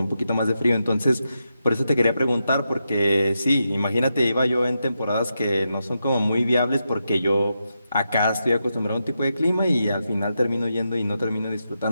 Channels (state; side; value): inverted; both; correlation -0.86